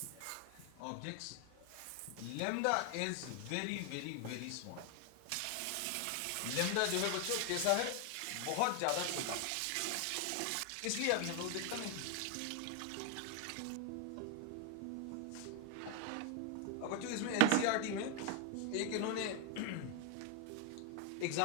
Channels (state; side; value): different; both; correlation 0.00